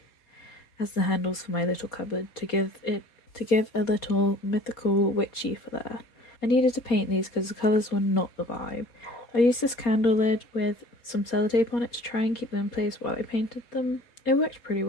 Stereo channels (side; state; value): right; late; 4.2 ms